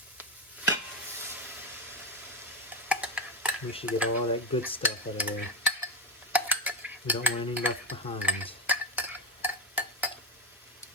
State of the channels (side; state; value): both; normal; correlation 0.13